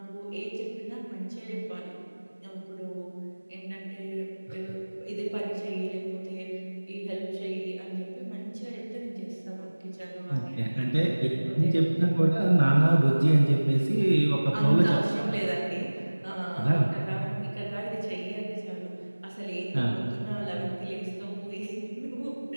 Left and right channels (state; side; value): inverted; both; correlation -1.00